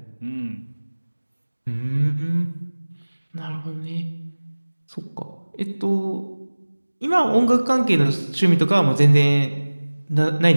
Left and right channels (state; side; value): inverted; both; correlation -1.00